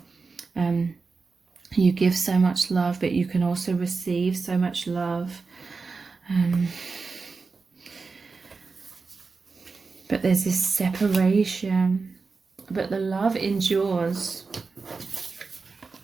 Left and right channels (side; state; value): left; quieter; 4.4 dB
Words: you give so much love, but you can also receive so much love. But there's this separation, but the love endures